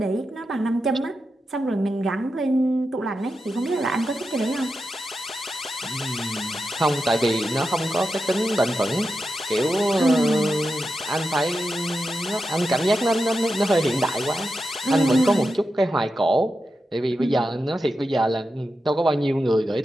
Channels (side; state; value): both; normal; correlation 0.89